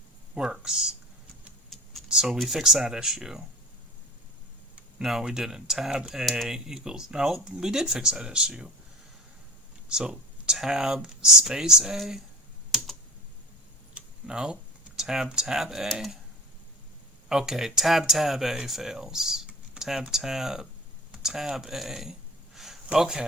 works. So we fix that issue. No, we didn't. Tab A equals... No, we did fix that issue. So tab space A? No. Tab A? Okay, tab A fails. Tab A.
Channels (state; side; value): normal; both; correlation 0.33